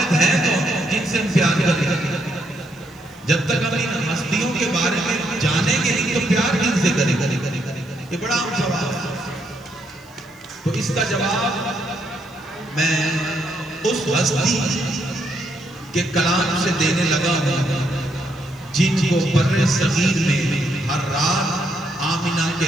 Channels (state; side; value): noise; right; hiss, 30 dB below the sound